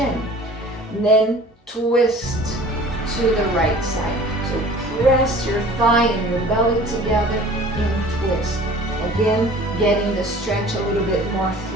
And then twist to the right side. So press your thigh and your belly together and twist. Again, getting the stretch a little bit more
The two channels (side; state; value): both; normal; correlation 0.46